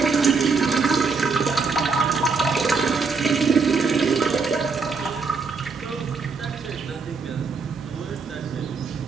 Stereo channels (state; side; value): quieter; left; 4.7 dB